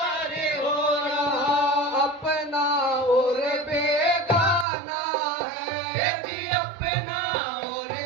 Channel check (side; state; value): left; drops out; at 4.7 s